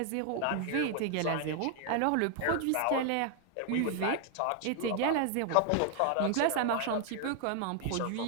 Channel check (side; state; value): both; different; correlation 0.00